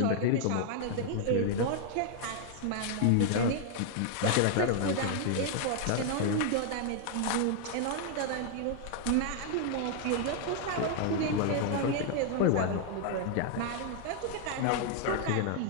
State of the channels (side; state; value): both; different; correlation 0.00